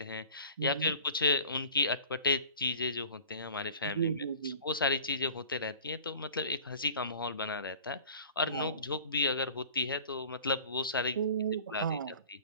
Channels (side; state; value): both; inverted; correlation -0.45